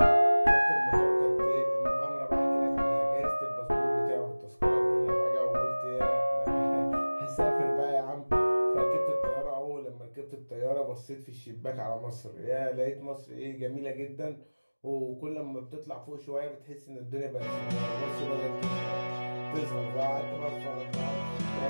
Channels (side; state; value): both; inverted; correlation -1.00